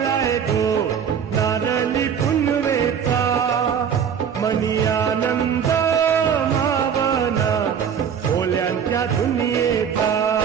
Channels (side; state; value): left; quieter; 7.7 dB